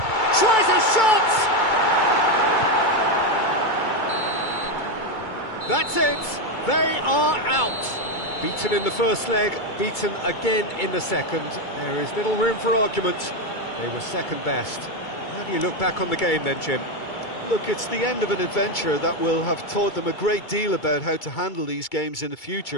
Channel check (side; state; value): right; late; 2.3 ms